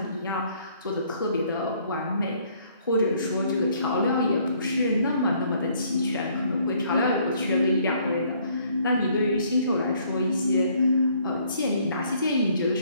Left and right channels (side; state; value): both; inverted; correlation -0.64